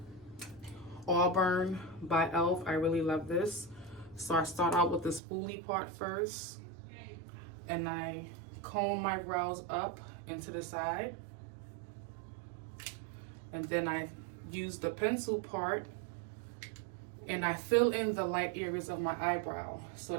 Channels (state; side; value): drops out; left; at 5.2 s